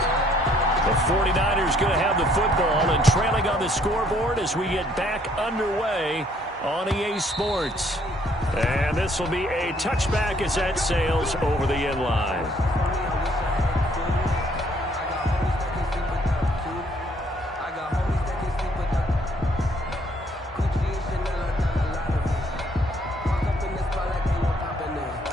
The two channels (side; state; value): both; normal; correlation 0.65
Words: The 49ers going to have the football and trailing on the scoreboard as we get back underway on EA Sports. And this will be a touchback as that sails over the end line.